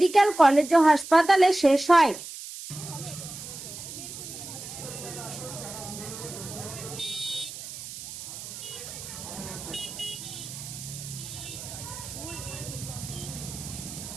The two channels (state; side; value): noise; right; hiss, 11 dB below the sound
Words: কলেজ ও হাসপাতালে শেষ হয়।